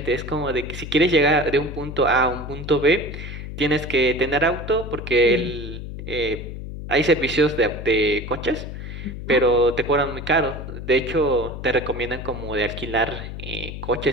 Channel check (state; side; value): noise; left; hum, 9 dB below the sound